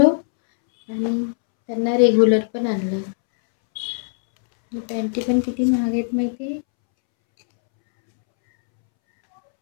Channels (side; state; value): right; silent; 66 dB below the other